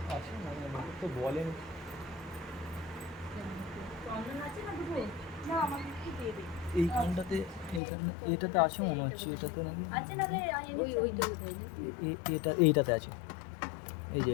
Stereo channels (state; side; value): drops out; right; at 7.8 s